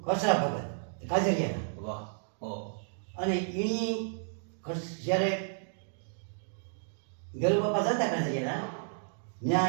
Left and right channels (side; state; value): left; silent; digital silence